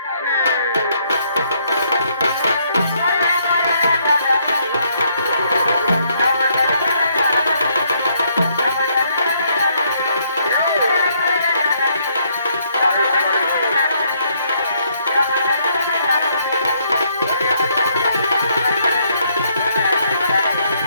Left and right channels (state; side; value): inverted; both; correlation -0.70